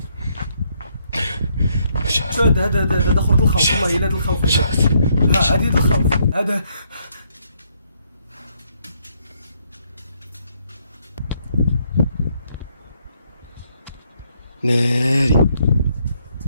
هذا خرط الخوف والله الا هذا الخوف هذا الخوف هذا ناري.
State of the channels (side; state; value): both; inverted; correlation -0.72